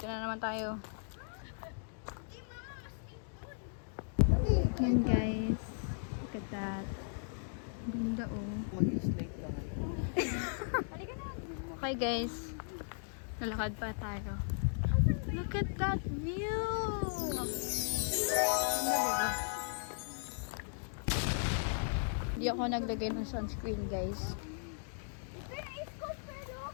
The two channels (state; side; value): silent; right; digital silence